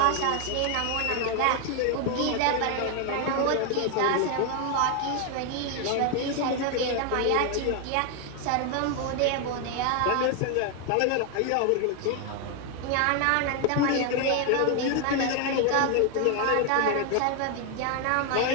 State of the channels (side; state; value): both; different; correlation 0.01